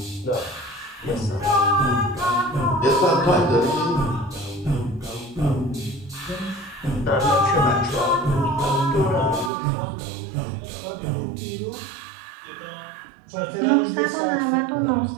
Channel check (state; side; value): drops out; left; at 9.5 s